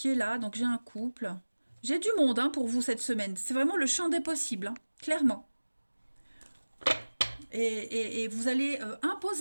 est là, donc j'ai un couple. J'ai du monde, hein, pour vous cette semaine, c'est vraiment le champ des possibles, hein, clairement. Et vous allez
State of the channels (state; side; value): inverted; both; correlation -1.00